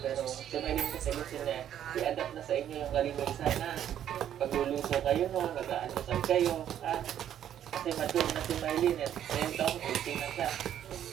si Mylene kasi gusto niya, i-adapt na sa inyo yung kalinisan, ha? Pag luluso kayo, no? Mag-aanusan kayo, ha? Kasi mature na si Mylene, eh. Ngayon taong 18 na siya.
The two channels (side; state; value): left; quieter; 10.4 dB